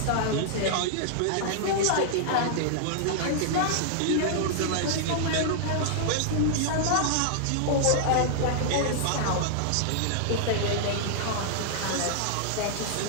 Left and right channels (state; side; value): different; both; correlation -0.01